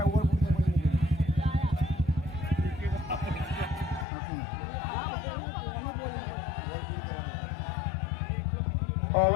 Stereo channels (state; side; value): drops out; right; at 4.0 s